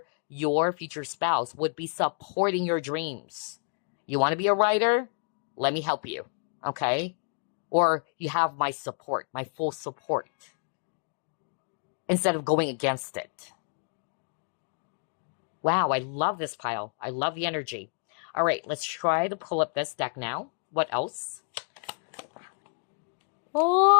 your future spouse would be supporting your dreams. You want to be a writer? Let me help you, okay? Or you have my support, my full support, instead of going against it. Wow, I love this pile. I love the energy. All right, let's try to pull up this deck now. What else?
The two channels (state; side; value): silent; right; 58 dB below the other